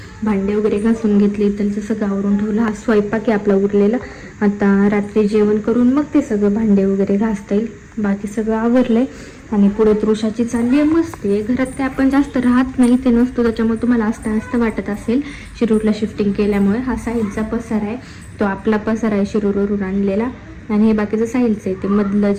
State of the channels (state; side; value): identical; both; correlation 1.00